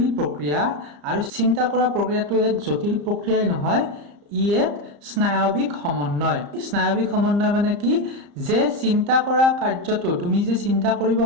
প্ৰক্ৰিয়া, আৰু চিন্তা কৰা প্ৰক্ৰিয়াটো এক জটিল প্ৰক্ৰিয়াই নহয়, ই এক স্নায়ৱিক সমন্বয়। স্নায়ৱিক সমন্বয় মানে কি? যে চিন্তা কৰা কাৰ্যটো, তুমি যে চিন্তা কৰিব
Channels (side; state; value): left; late; 34 ms